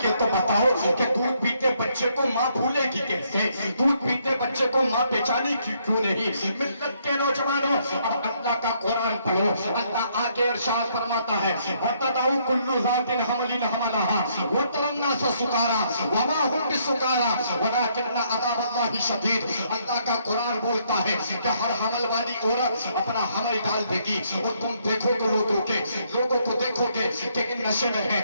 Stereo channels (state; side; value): inverted; both; correlation -0.70